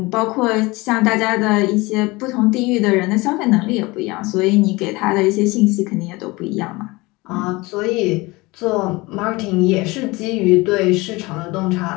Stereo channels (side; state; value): right; quieter; 22.8 dB